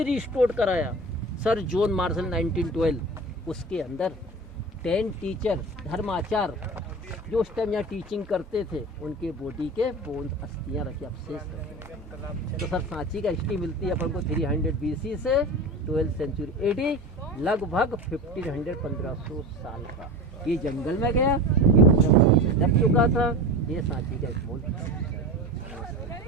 रिस्टोर कराया सर जॉन मार्शल 1912। उसके अंदर 10 टीचर धर्माचार जो उस टाइम यहाँ टीचिंग करते थे, उनके बॉडी के बोन अस्थियाँ रखी, अवशेष रखे। तो सर सांची का हिस्ट्री मिलती है अपन को 300 BC से 12th सेंचुरी AD, लगभग 1500-1500 साल का। ये जंगल में गया, ये दब चुका था। ये सांची का एक मोल।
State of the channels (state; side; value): normal; both; correlation 0.30